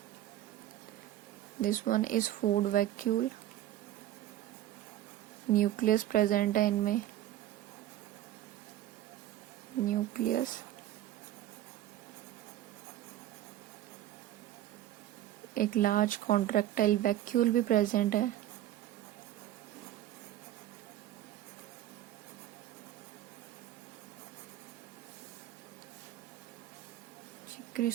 This one is food vacuole. Nucleus present है इनमें, न्यूक्लियस। एक लार्ज कॉन्ट्रैक्टाइल वैक्यूल भी प्रेजेंट है।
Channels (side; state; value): left; quieter; 13.1 dB